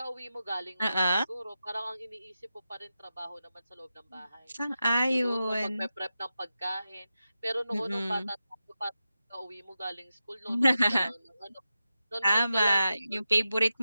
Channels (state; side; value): inverted; both; correlation -0.91